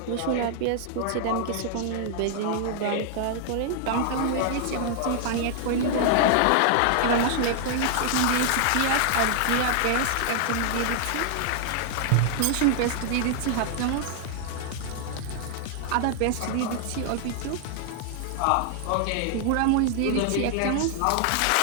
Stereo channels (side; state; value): both; different; correlation 0.00